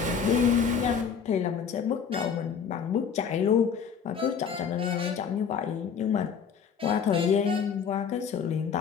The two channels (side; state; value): right; quieter; 6.8 dB